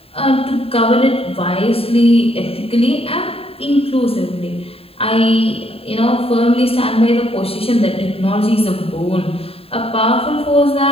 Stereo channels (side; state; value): right; late; 0.28 ms